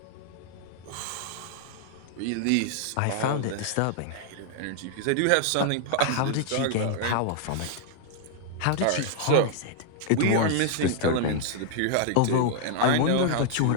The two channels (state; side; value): different; both; correlation 0.00